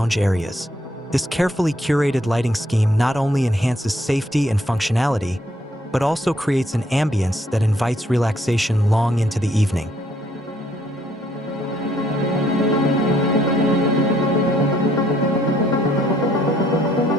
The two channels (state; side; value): normal; both; correlation 0.67